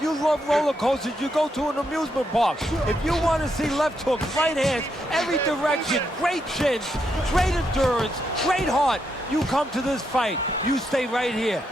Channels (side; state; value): both; normal; correlation 0.80